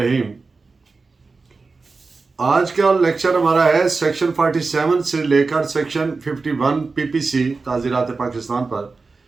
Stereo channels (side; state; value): left; quieter; 4.1 dB